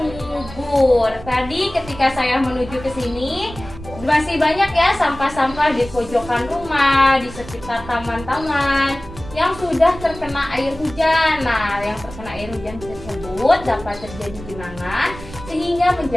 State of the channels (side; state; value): right; noise; rumble, 15 dB below the sound